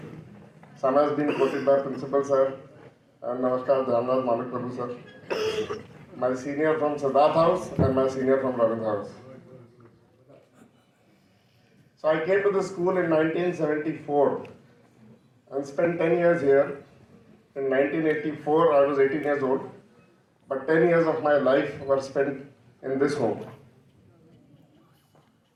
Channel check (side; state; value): both; identical; correlation 1.00